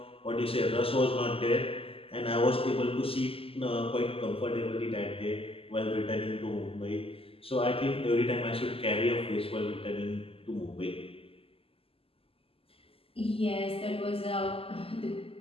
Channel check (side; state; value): right; late; 0.27 ms